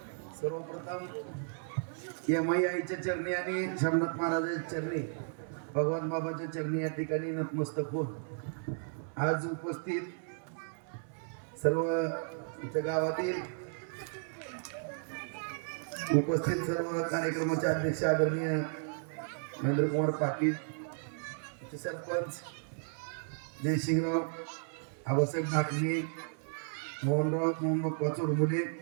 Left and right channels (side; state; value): left; silent; digital silence